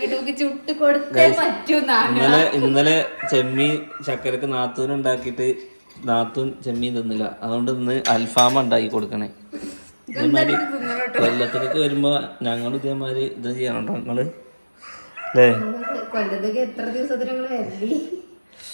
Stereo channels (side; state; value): both; inverted; correlation -1.00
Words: നമുക്ക് ചുട്ട് കൊടുത്തേ പറ്റൂന്നാണ്. ഇന്നലെ ചെമ്മീൻ ചക്കരക്ക് നാത്തൂൻ ഉണ്ടാക്കിയിട്ട് നാത്തൂൻ ചെമ്മീൻ തിന്നില്ല. അതുകൊണ്ട് ഇന്ന് അൽഫാമ ഉണ്ടാക്കി കൊടുക്കണേ. ഇതേമാതിരി കൊല്ലത്തേക്ക് വരുമ്പോ ഞങ്ങൾ ഇതേമാതിരി ഇത് ചെയ്യണോ നിങ്ങള് അല്ലേ? കൊല്ലത്തേക്ക് എത്ര ദിവസത്തിന് ഞങ്ങൾ വരല്ലേ?